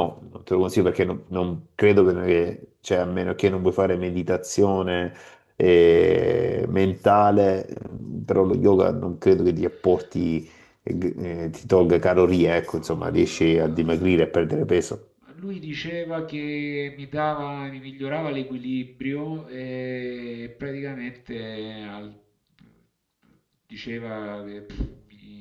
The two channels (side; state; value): both; identical; correlation 1.00